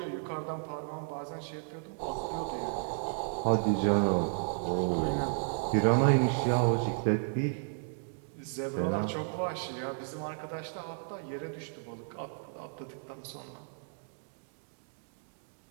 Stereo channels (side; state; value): left; silent; digital silence